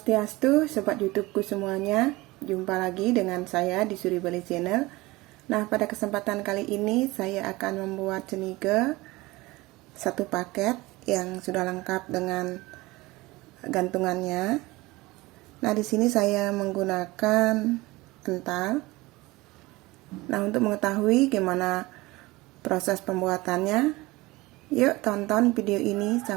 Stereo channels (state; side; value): quieter; left; 21.1 dB